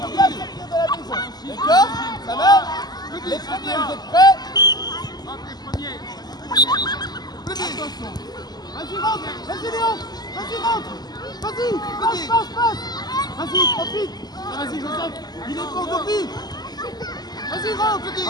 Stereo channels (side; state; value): right; late; 0.20 ms